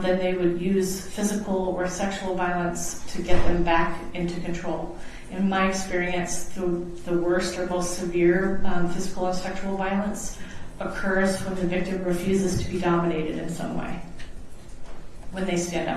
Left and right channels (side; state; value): both; identical; correlation 1.00